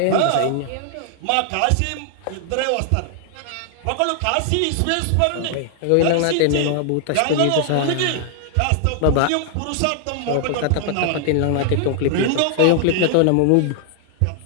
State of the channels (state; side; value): different; both; correlation 0.00